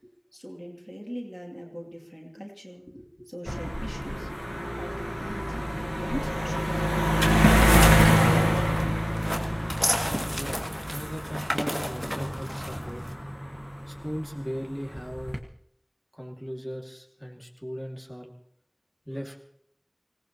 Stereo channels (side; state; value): both; identical; correlation 1.00